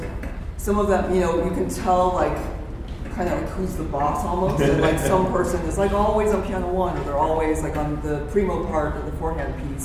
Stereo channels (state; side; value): identical; both; correlation 1.00